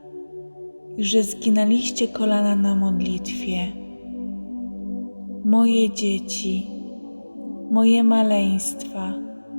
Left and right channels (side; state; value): both; inverted; correlation -1.00